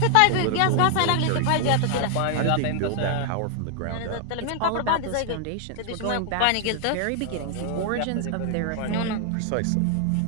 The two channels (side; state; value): both; different; correlation 0.00